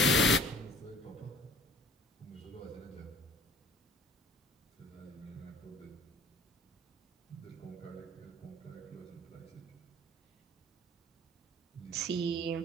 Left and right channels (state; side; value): normal; both; correlation 0.50